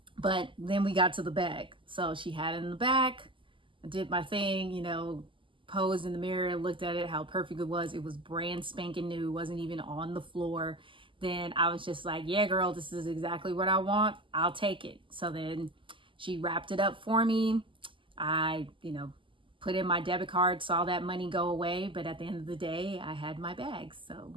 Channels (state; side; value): late; left; 0.25 ms